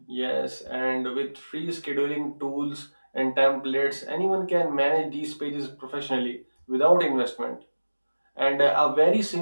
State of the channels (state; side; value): inverted; both; correlation -1.00